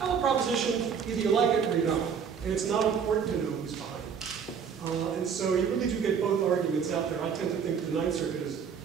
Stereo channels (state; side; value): quieter; left; 6.9 dB